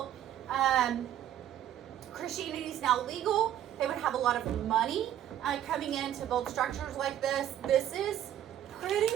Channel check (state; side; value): quieter; left; 11.2 dB